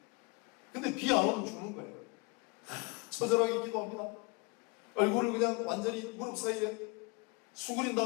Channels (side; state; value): right; quieter; 29.9 dB